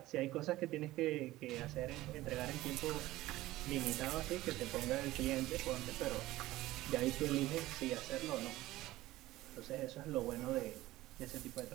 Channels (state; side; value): quieter; left; 16.9 dB